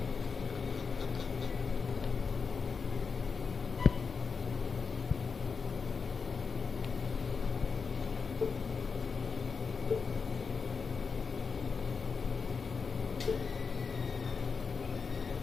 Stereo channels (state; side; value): quieter; right; 5.3 dB